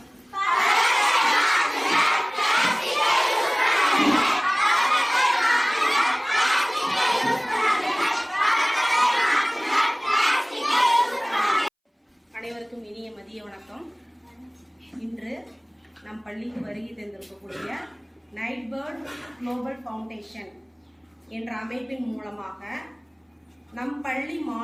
இனிய மதிய வணக்கம். இன்று நம் பள்ளிக்கு வருகை தந்திருக்கக்கூடிய நைட் பேர்ட் குளோபல் ஃபவுண்டேஷன் என்ற அமைப்பின் மூலமாக நம் பள்ளி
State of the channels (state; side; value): identical; both; correlation 1.00